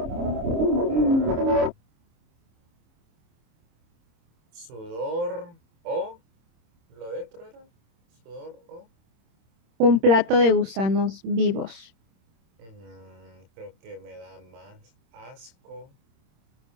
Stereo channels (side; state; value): left; late; 26 ms